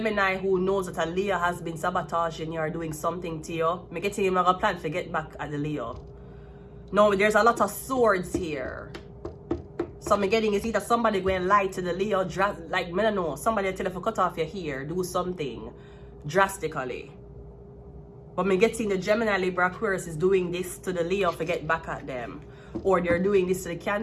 who knows that a Leo has been sabotaging you or doing something to you. Me getting him a plan to get back at the Leo. No, there's a lot of swords here. So I'm getting is either somebody going to lie to the Leo, like, I don't know, somebody tell you to cut off your hair, do something drastically. But I'm getting the Gemini, Libra, Aquarius is doing this to the Leo to get back at them. Or they're doing this to the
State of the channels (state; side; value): identical; both; correlation 1.00